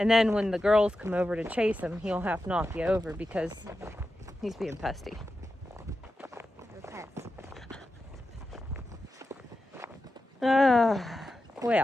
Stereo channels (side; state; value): both; normal; correlation 0.91